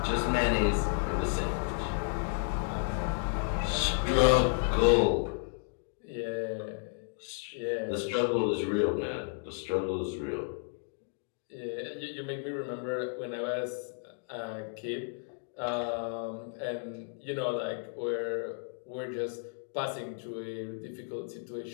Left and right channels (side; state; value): right; silent; 56 dB below the other